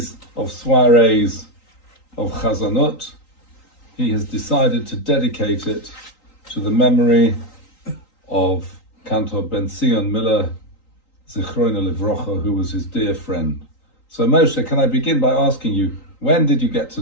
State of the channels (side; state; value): right; late; 3.9 ms